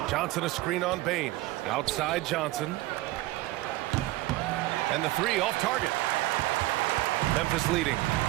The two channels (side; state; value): left; quieter; 18.3 dB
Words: Johnson a screen on Bain. Outside Johnson. And the three off target. Memphis leading.